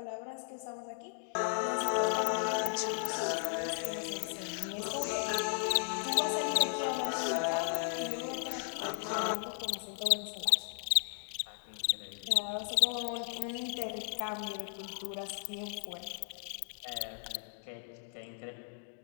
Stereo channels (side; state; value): right; silent; digital silence